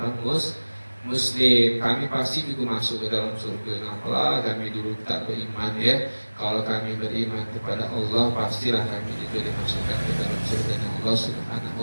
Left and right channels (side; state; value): both; inverted; correlation -1.00